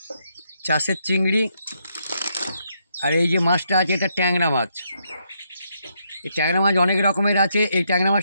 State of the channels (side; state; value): both; inverted; correlation -0.77